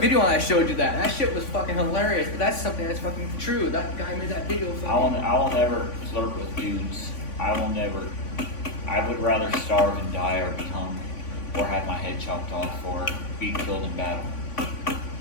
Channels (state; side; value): late; right; 3.5 ms